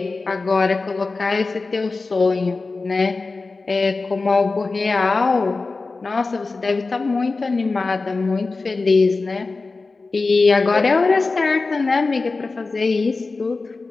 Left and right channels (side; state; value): right; quieter; 3.8 dB